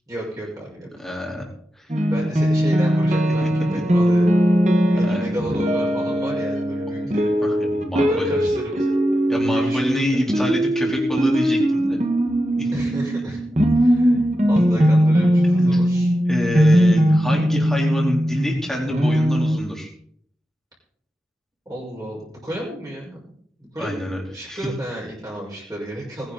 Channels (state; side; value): normal; both; correlation 0.90